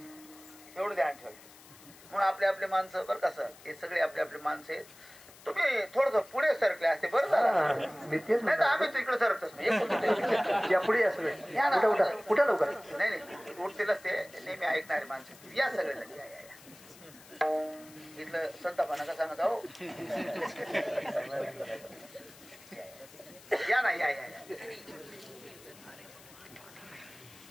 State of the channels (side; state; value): left; noise; hiss, 21 dB below the sound